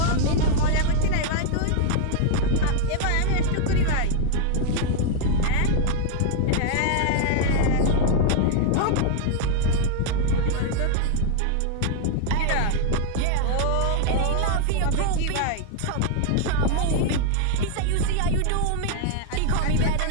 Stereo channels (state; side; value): different; both; correlation 0.00